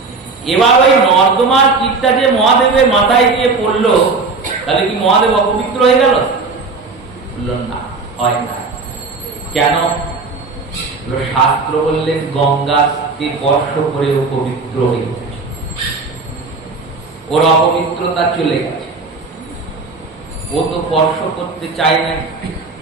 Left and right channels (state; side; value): quieter; left; 4.0 dB